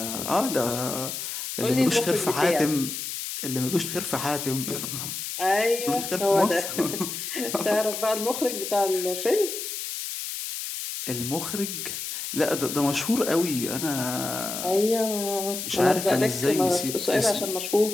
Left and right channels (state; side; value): noise; left; hiss, 6 dB below the sound